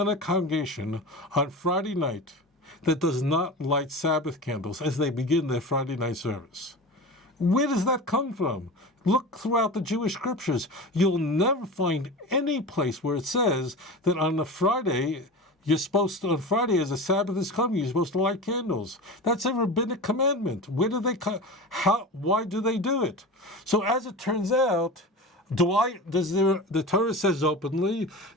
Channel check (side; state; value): both; normal; correlation 0.30